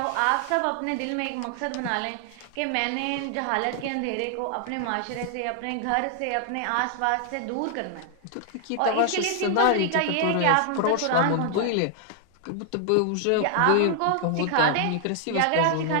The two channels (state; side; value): different; both; correlation 0.00